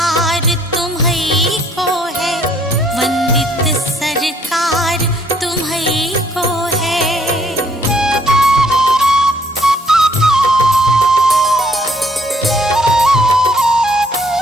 तुम्हीं को है, वंदित सरकार तुम्हीं को है।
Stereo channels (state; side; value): normal; both; correlation 0.65